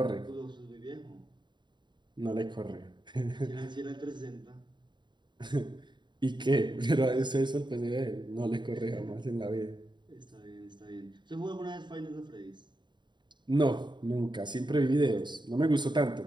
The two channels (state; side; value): late; left; 0.22 ms